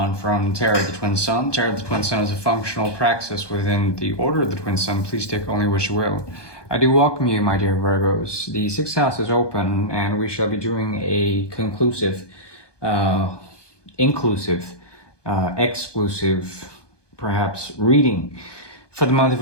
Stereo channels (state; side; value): late; right; 1.2 ms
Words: from Tarot of the Twin Sun. Tarot of the Twin Sun is a functional praxis within the Order of the Twin Sun. Please take only what you will. I do welcome you, my dear Virgos. The sixth house is open and we shall be doing a conclusive, inclusive, exclusive, perhaps reading for the month